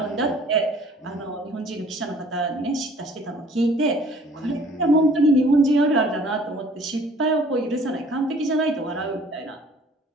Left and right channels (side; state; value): both; normal; correlation 0.54